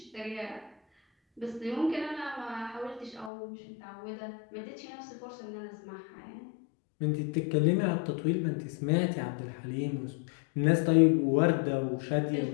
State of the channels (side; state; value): right; drops out; at 3.3 s